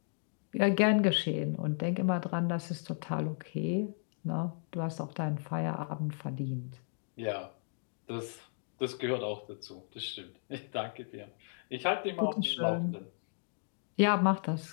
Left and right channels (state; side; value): silent; right; digital silence